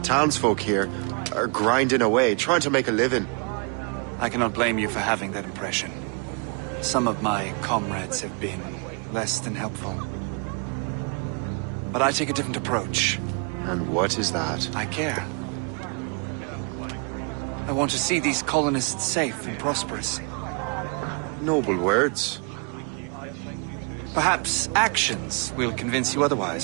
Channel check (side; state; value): left; quieter; 36.9 dB